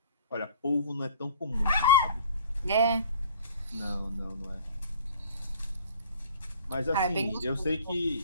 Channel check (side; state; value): both; inverted; correlation -0.48